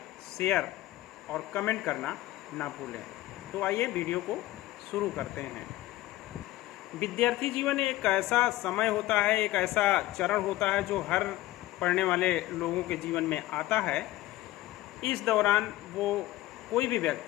शेयर और कमेंट करना ना भूलें। तो आइए वीडियो को शुरू करते हैं। विद्यार्थी जीवन एक ऐसा समय होता है, एक ऐसा चरण होता है जो हर पढ़ने वाले लोगों के जीवन में आता है। इस दौरान वो कोई भी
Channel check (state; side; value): quieter; right; 16.5 dB